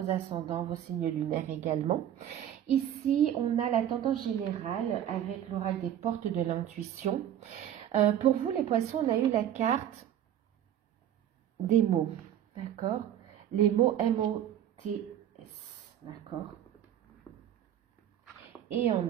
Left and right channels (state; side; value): quieter; left; 10.7 dB